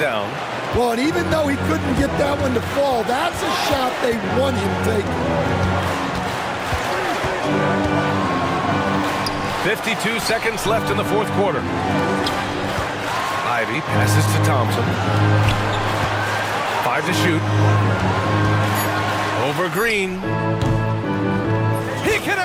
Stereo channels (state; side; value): identical; both; correlation 1.00